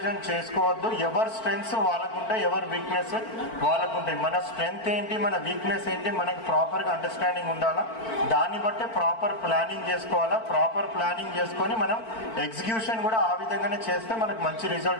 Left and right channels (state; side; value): late; right; 4.5 ms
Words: చేసుకోవద్దు. ఎవరి స్ట్రెంగ్స్ వాళ్ళకుంటాయి, ఎవరి వీక్నెస్ వాళ్ళకుంటాయి. మన స్ట్రెంగ్త్ ఏంటి, మన వీక్నెస్ ఏంటి, మనకి ప్రాపర్గా అండర్స్టాండింగ్ ఉండాలా. దాన్ని బట్టే ప్రాపర్ ప్లానింగ్ చేసుకోవాలా. ప్రాపర్ ప్లానింగ్ చేసుకొని మనం ఎగ్జిక్యూషన్ కూడా ఆ విధంగానే చేస్తే మనకు మంచి